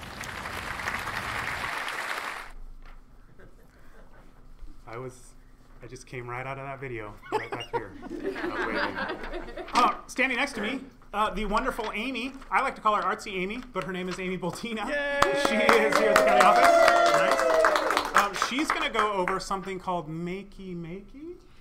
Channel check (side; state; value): both; identical; correlation 1.00